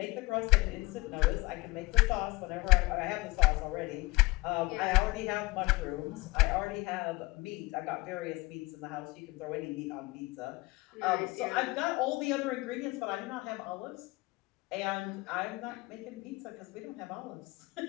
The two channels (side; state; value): right; quieter; 21.6 dB